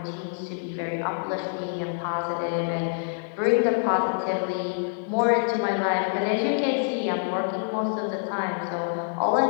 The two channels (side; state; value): right; silent; 61 dB below the other